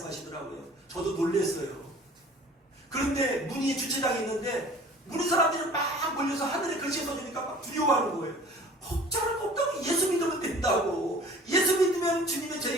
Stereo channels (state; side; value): normal; both; correlation 0.47